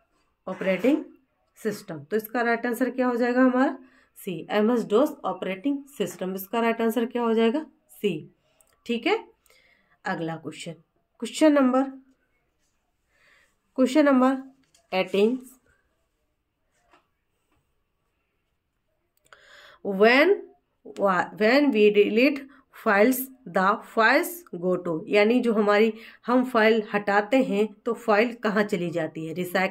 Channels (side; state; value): both; identical; correlation 1.00